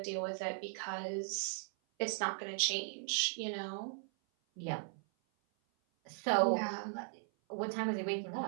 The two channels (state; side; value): silent; left; 52 dB below the other